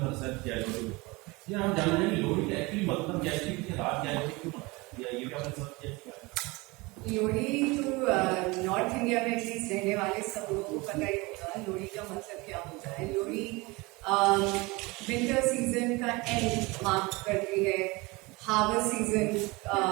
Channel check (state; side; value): quieter; left; 24.3 dB